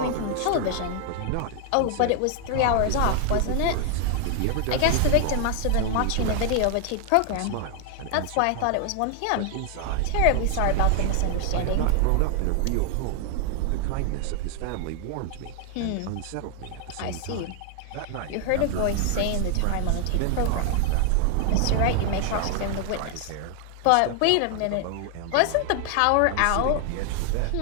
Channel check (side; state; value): both; different; correlation 0.00